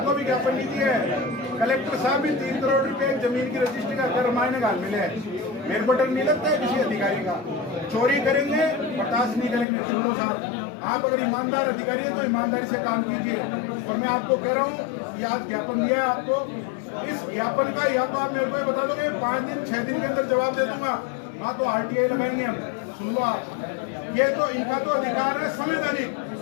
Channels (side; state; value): right; drops out; at 9.7 s